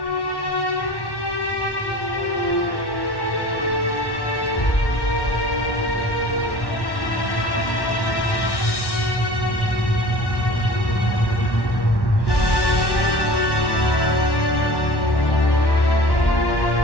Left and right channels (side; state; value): right; late; 1.1 ms